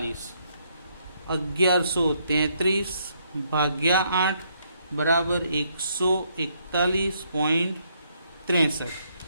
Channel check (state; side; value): inverted; both; correlation -0.73